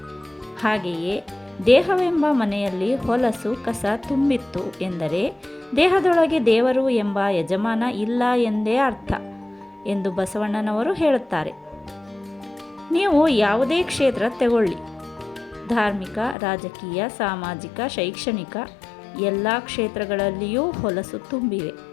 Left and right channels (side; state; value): right; drops out; at 16.4 s